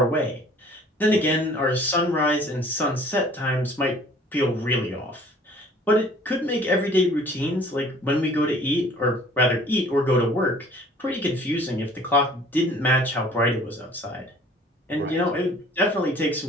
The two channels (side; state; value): both; normal; correlation 0.52